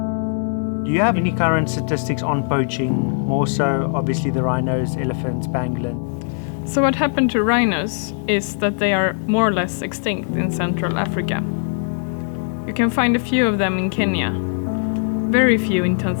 Do you have any current statistics on poaching? More so, obviously, the rhinos, elephants, pangolin. So what happened to rhinos is that they are more or less extinct in Central Africa. You can find a few of them in Kenya, very few in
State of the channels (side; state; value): right; silent; digital silence